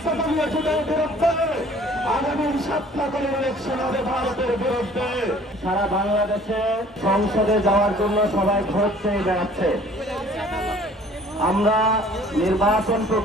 বিরুদ্ধে, আগামী সপ্তাহের ইলেকশন হবে ভারতের বিরুদ্ধে। সারা বাংলাদেশে সংসদে যাওয়ার জন্য সবাই ভোট চেয়ে বেড়াচ্ছে। আমরা নির্বাচন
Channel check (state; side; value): normal; both; correlation 0.53